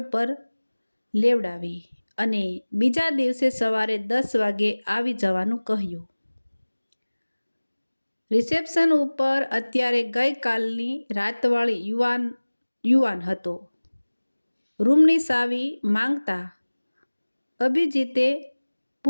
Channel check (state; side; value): inverted; both; correlation -1.00